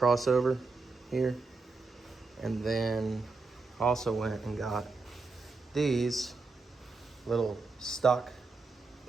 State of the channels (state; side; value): quieter; left; 3.9 dB